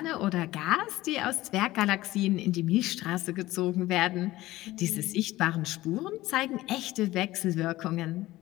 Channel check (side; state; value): right; quieter; 17.2 dB